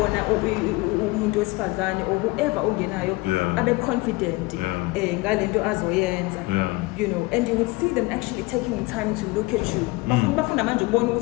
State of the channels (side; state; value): right; quieter; 22.9 dB